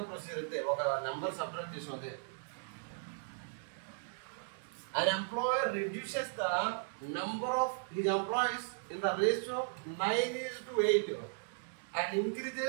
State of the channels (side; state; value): left; silent; digital silence